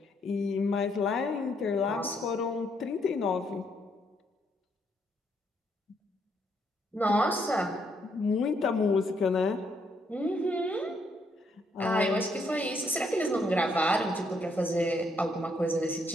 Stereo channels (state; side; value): normal; both; correlation 0.73